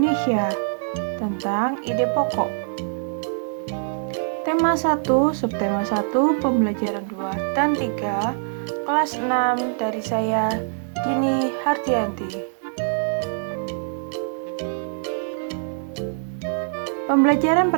tentang ide pokok. Tema 1, subtema 1, pembelajaran 2 dan 3, kelas 6 dari saya, Dini Hardianti. Pembelajaran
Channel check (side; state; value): left; silent; 63 dB below the other